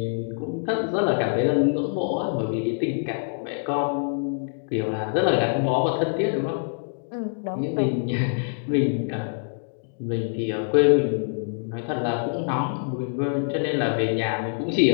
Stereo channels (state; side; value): silent; right; digital silence